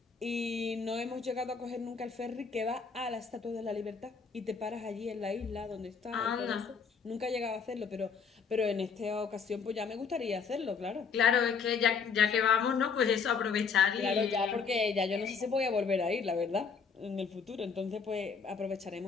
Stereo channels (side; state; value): right; quieter; 5.6 dB